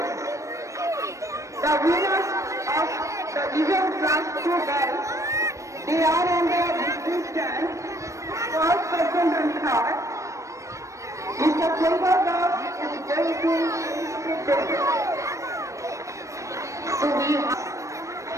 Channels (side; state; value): left; late; 0.15 ms